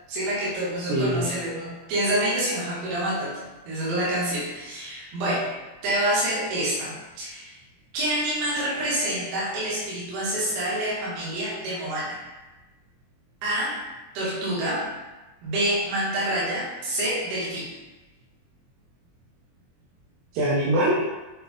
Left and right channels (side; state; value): left; late; 23 ms